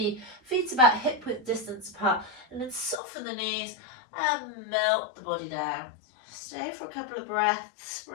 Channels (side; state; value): right; drops out; at 3.0 s